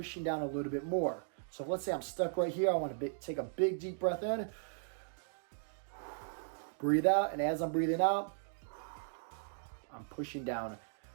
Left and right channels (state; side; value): silent; left; digital silence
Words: down a little bit more. So let's say I'm stuck right here. I want to take a big deep breath in, breathe out, and as I'm breathing out, I'm pushing down